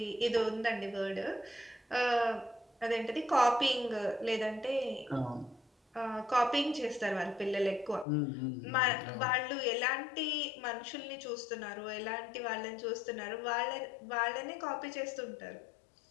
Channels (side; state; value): right; drops out; at 8.1 s